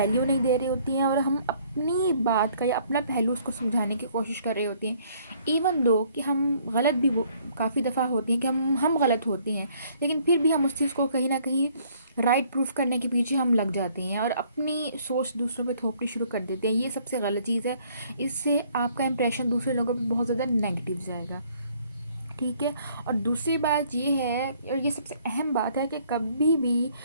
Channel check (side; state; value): both; inverted; correlation -0.62